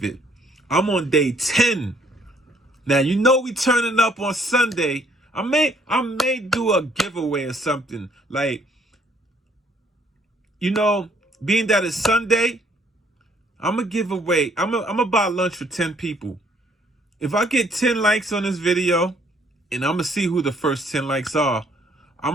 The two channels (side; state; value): both; normal; correlation 0.64